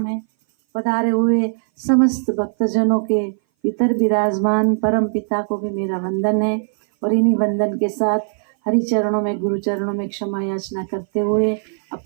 है। पधारे हुए समस्त भक्तजनों के भीतर विराजमान परम पिता को भी मेरा वंदन है। और इन्हीं वंदन के साथ हरि चरणों में, गुरु चरणों में क्षमा याचना करते हुए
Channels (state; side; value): silent; left; 59 dB below the other